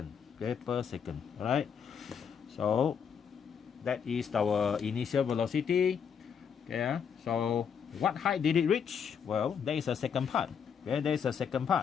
Okay, per second. All right. So that is our initial velocity. Okay, so what height did it reach? Well, there is a second part. Okay, there is a second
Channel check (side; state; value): right; quieter; 7.2 dB